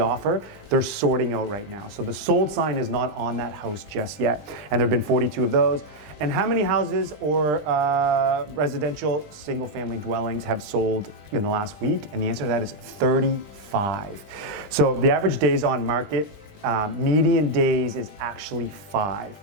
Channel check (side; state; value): left; late; 20 ms